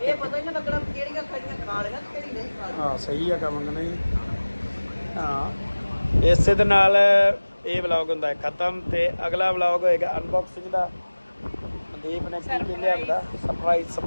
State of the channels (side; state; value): both; inverted; correlation -1.00